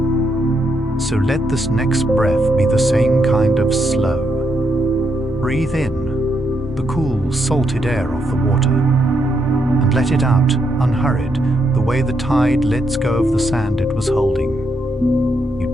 So let this next breath be the same kind of slow. Breathe in the cool, salted air of the water, and let it out, unhurried, the way the tide lets go of the sand it was holding. You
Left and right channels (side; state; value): both; normal; correlation 0.79